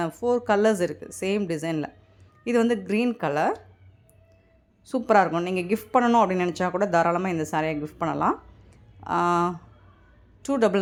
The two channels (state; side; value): identical; both; correlation 1.00